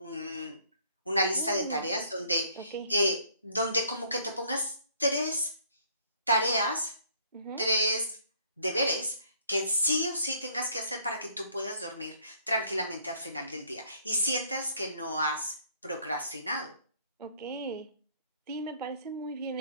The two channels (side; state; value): both; inverted; correlation -0.62